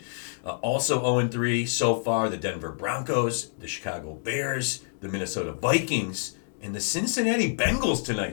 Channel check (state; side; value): silent; right; digital silence